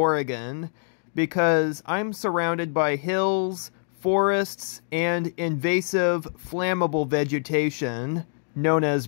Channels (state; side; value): silent; right; digital silence